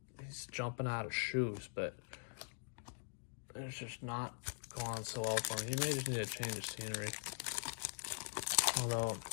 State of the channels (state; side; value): silent; right; digital silence